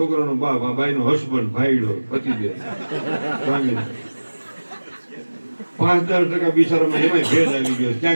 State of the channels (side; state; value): both; inverted; correlation -1.00